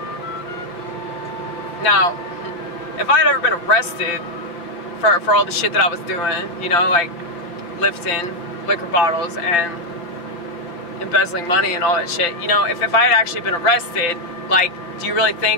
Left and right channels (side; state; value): right; late; 5.8 ms